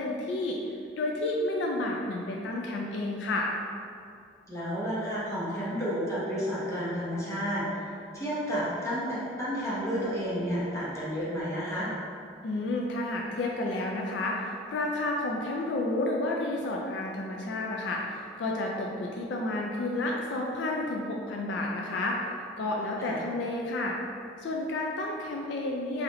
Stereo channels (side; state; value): both; normal; correlation 0.38